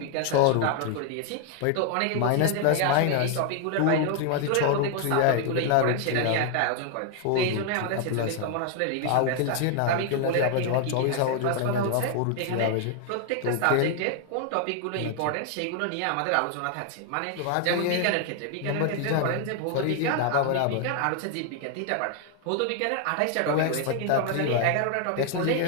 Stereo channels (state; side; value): different; both; correlation 0.00